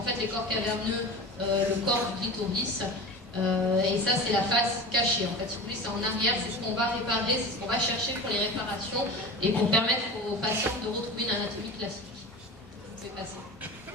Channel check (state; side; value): normal; both; correlation 0.33